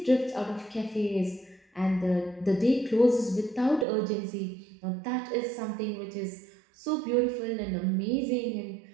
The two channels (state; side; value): drops out; left; at 3.9 s